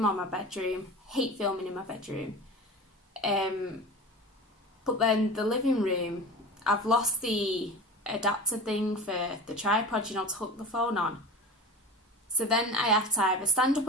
or my bedroom. Hate filming in my bedroom. But then the living room, I've lost the adapter thing for the tripod, you know, to hook the phone on. So then I have to either stand up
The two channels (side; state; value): both; normal; correlation 0.33